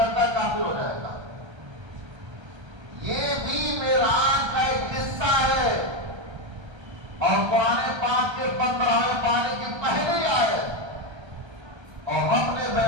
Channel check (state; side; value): late; left; 1.3 ms